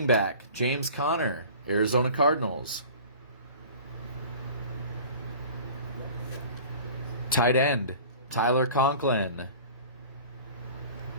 back, James Conner, Arizona Cardinals. Tight end, Tyler Conklin,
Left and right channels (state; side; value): inverted; both; correlation -0.42